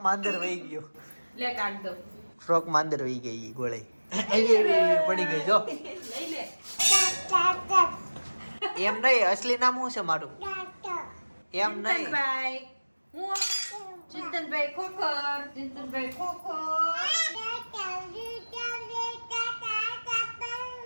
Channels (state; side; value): inverted; both; correlation -1.00